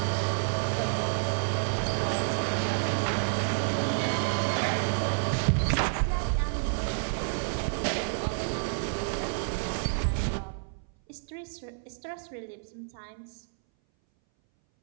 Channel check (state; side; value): silent; left; 58 dB below the other